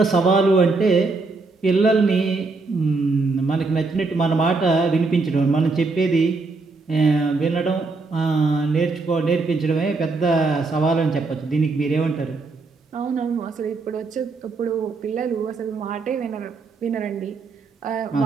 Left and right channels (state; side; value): quieter; left; 3.9 dB